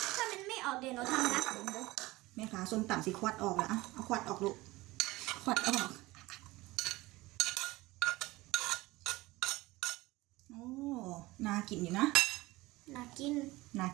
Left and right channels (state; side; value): quieter; left; 20.1 dB